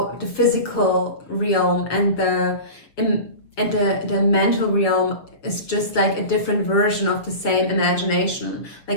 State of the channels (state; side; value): late; right; 6.8 ms